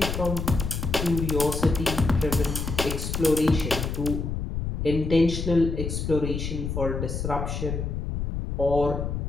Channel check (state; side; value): noise; left; rumble, 3 dB below the sound